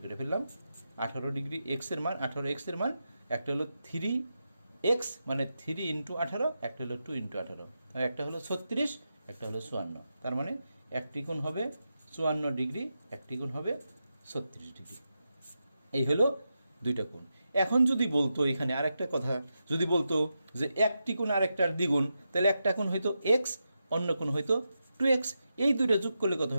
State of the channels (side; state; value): both; inverted; correlation -0.88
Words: করে ফেললাম। 18 ডিগ্রি এক্সের মান, 18 এক্সের মান, একটা হলো 3x মানে 3 × 18, একটা হলো 2 × 18, একটা হলো 36, একটা হলো 54। তার মানে একটি কোণ হবে 54 ডিগ্রি, একটি কোণ হবে 36 ডিগ্রি। এই হলো দুইটা কোণ। এখন যদি বলতো এখানে আরেকটা কথা, যদি বলতো যে একটি কোণ আরেকটার দ্বিগুণ, তাহলে একটা কোণ হয়তো এক্স, অন্য কোণ হয়তো 2x, এই দুইটা যোগ করলে কত